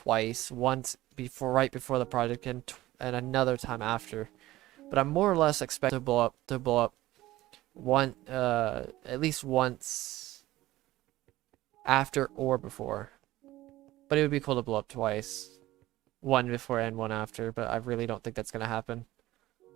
Once right before the project and another time after. But I'm more or less expecting to blow up at least once after or before. But it would be cool to blow up twice. One before and one after, but I really don't think that's gonna happen.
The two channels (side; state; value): left; quieter; 16.7 dB